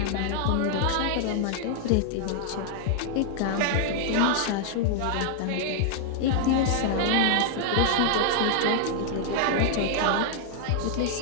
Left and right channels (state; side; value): different; both; correlation 0.00